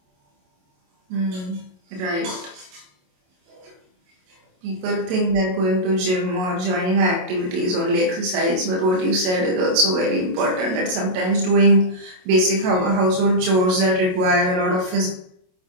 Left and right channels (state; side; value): late; left; 27 ms